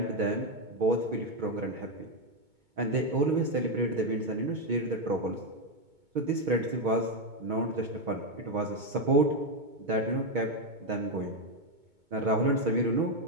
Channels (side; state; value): left; late; 2.2 ms